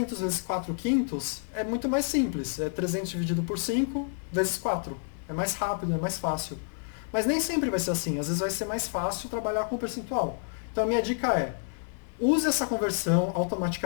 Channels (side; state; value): right; silent; 59 dB below the other